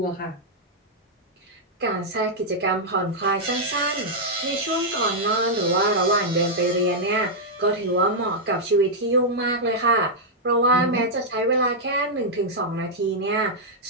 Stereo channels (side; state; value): both; normal; correlation -0.05